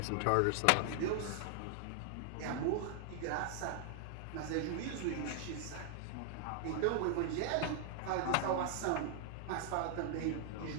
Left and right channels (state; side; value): different; both; correlation 0.00